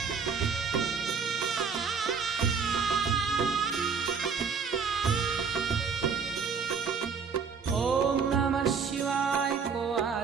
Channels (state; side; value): quieter; left; 5.8 dB